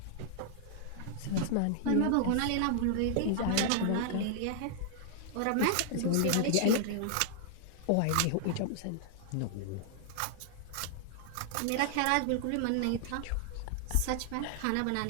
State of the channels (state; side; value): different; both; correlation 0.00